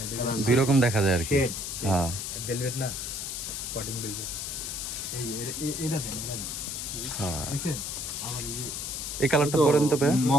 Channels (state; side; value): noise; left; hiss, 5 dB below the sound